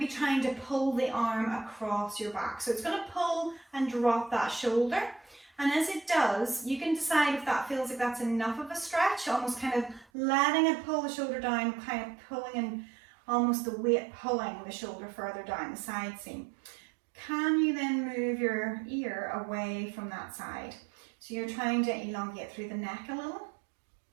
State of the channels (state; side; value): drops out; left; at 10.1 s